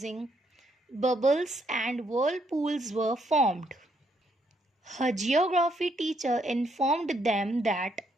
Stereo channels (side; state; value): both; normal; correlation 0.73